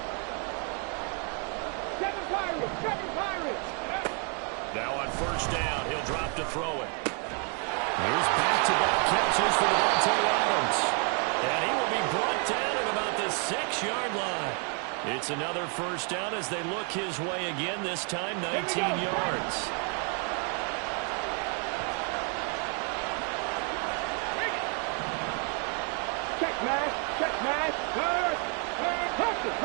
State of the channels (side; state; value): left; quieter; 39.3 dB